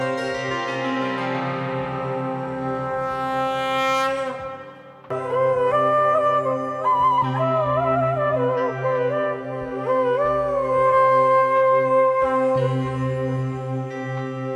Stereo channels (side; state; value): both; identical; correlation 1.00